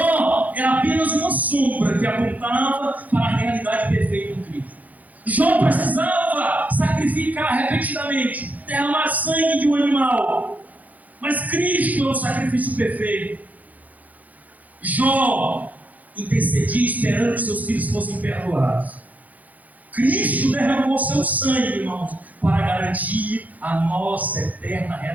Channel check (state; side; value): late; left; 0.078 ms